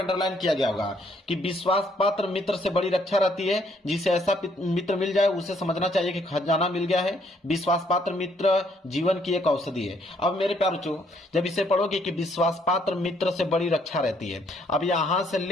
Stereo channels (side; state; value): both; normal; correlation 0.68